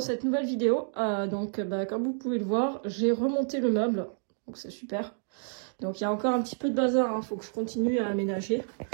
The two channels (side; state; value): left; silent; digital silence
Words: cette nouvelle vidéo. Comme vous pouvez le voir, j'ai remonté le meuble, donc c'est super. Donc il y a encore un petit peu de bazar, hein, faut que je continue à aménager.